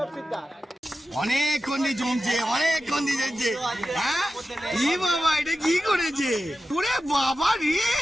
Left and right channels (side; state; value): both; normal; correlation 0.92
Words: সিদ্ধার। অনেকক্ষণ দিয়ে জমছে, অনেকক্ষণ দিয়ে যাচ্ছে। হ্যাঁ ই বাবা এটা কি করেছে? পুরে বাবা রে,